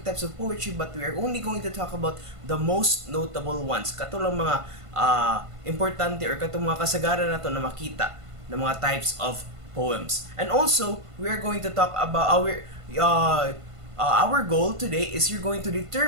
types of poetry, but we are only going to talk about the most notable ones. Katulang mga importante or katong mga kasagaran na to na makita ng mga types of poems. And also, we are going to talk about our goal today is you're going to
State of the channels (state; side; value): late; left; 1.5 ms